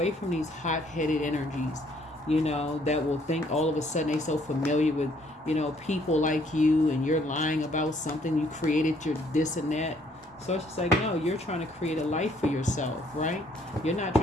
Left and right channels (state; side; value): normal; both; correlation 0.65